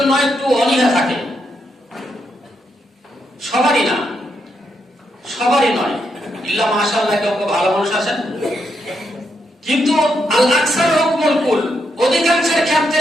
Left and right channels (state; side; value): normal; both; correlation 0.80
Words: একটু অনীহা থাকে। সবারই নয়, ইল্লা মাশাআল্লাহ কেউ ভালো মানুষ আছেন, কিন্তু আল আকসার হুকমুল কুল, অধিকাংশের ক্ষেত্রে